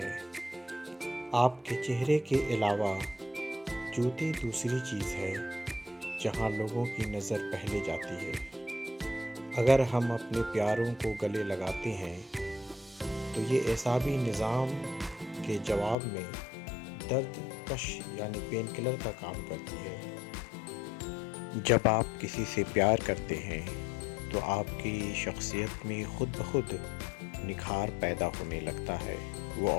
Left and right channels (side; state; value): right; drops out; at 16.0 s